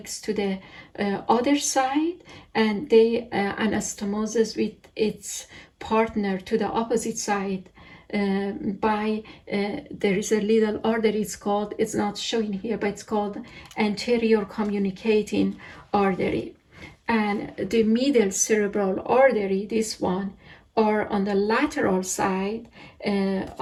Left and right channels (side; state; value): both; identical; correlation 1.00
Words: to the other side, and they anastomoses with its partner to the opposite side by there is a little artery. It's not showing here, but it's called anterior communicating artery. And the middle cerebral artery, this one, are on the lateral side